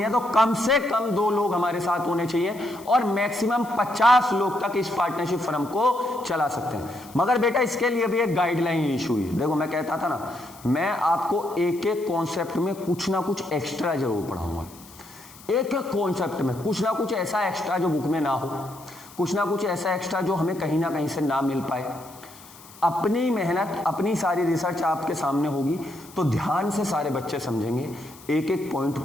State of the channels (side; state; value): left; noise; hiss, 21 dB below the sound